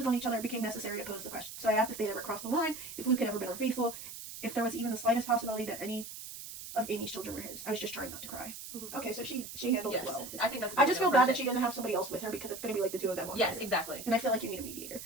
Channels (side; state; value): right; noise; hiss, 11 dB below the sound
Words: on each other, it became necessary to pose the question. So I asked if they'd ever crossed the line, if Luke had ever been unfaithful, if there was even the slightest possibility that any of Amy's children were his. I was just trying not to cry. Mhm. Okay, so she handled Yes. it well. I think that's. I just feel bad that she didn't have somebody else with her because it's going to be like the two of them. Yes, exactly. And I feel like you need a mediator.